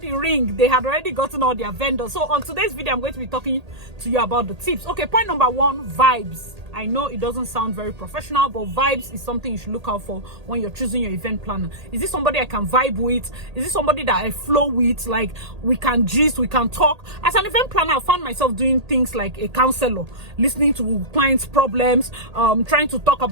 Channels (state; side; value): late; left; 1.8 ms